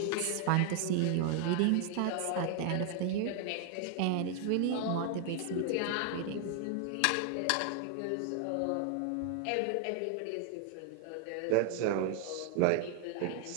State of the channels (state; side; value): different; both; correlation 0.00